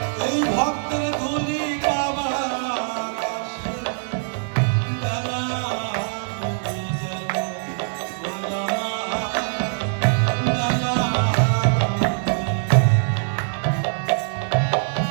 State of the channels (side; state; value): left; silent; 63 dB below the other